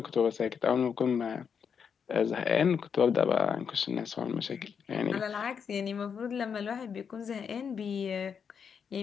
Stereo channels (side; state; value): right; quieter; 6.8 dB